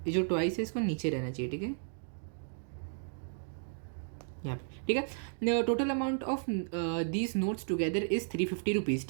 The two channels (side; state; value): left; silent; digital silence